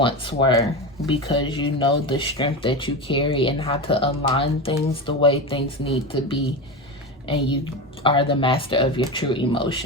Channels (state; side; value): normal; both; correlation 0.21